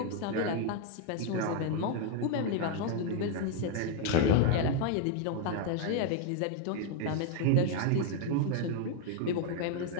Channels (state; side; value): different; both; correlation 0.01